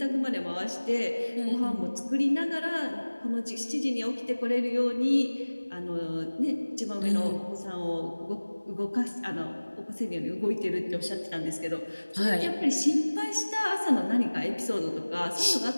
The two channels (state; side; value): inverted; both; correlation -1.00